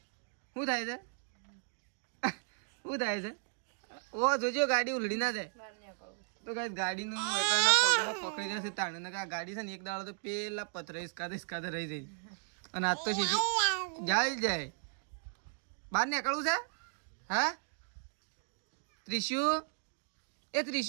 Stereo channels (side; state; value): left; silent; 54 dB below the other